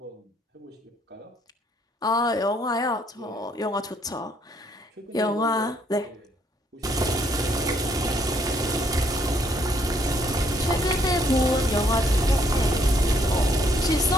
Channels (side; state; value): both; normal; correlation 0.68